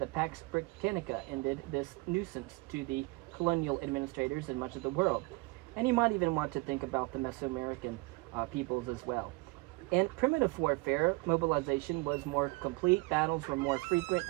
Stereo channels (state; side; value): quieter; left; 25.5 dB